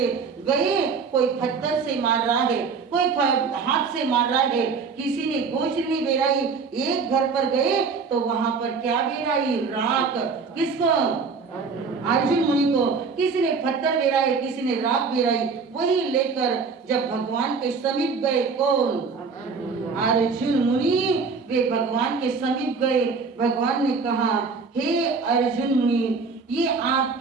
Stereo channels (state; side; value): quieter; left; 5.0 dB